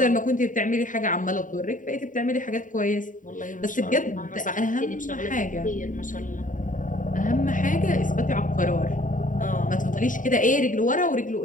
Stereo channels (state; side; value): late; right; 0.38 ms